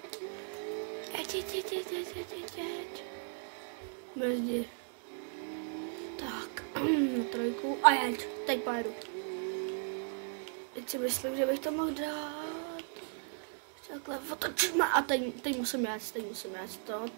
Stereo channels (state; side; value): silent; left; 54 dB below the other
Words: Brzdí. Tak, trojku a jeď, teď pojedu. Teď si myslím, že bych to mohl dát. Takhle otočíme a teď musím jet, to